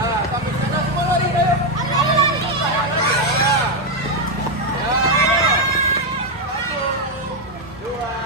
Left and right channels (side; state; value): both; normal; correlation 0.04